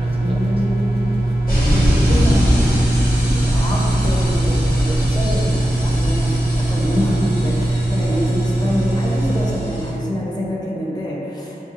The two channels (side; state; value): both; normal; correlation 0.92